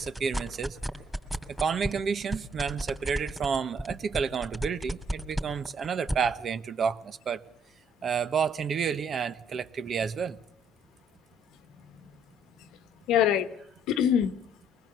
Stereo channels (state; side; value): normal; both; correlation 0.66